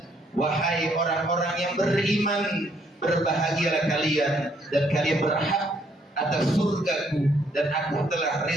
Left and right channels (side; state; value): both; normal; correlation 0.69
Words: wahai orang-orang yang beriman, berbahagialah kalian dan kalian berhak atas surgaku dan aku telah